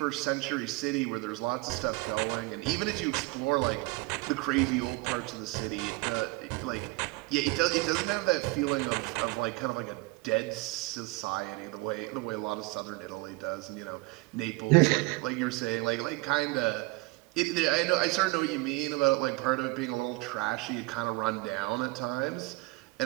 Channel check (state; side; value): quieter; left; 23.5 dB